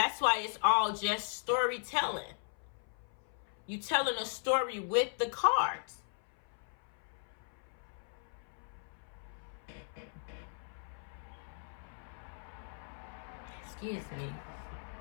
why it's all just storytelling. You telling a story with the cards. Excuse me.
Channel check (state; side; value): silent; right; 53 dB below the other